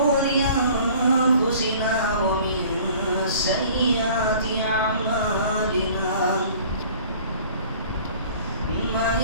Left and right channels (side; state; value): both; inverted; correlation -0.49